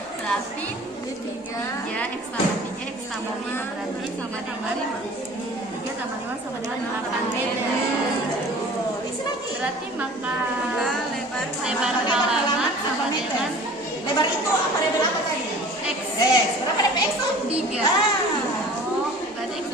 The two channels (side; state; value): both; normal; correlation 0.44